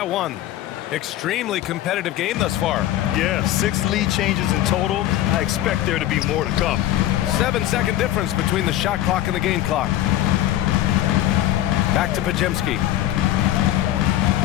1. Extremely competitive game thus far. Yeah, 6 lead changes in total. I expect there to be more to come. 7-second difference between the shot clock and the game clock. Back to Podziemski.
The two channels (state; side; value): quieter; right; 13.4 dB